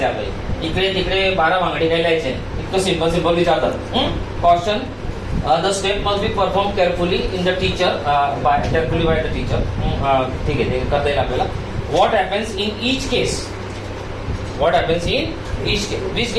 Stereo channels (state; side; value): identical; both; correlation 1.00